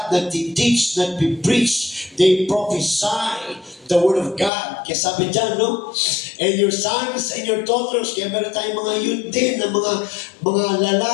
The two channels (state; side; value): drops out; right; at 4.5 s